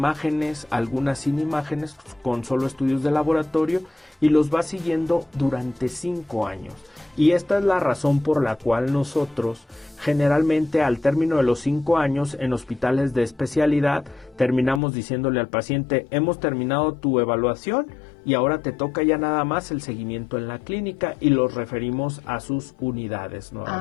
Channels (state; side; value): drops out; right; at 14.8 s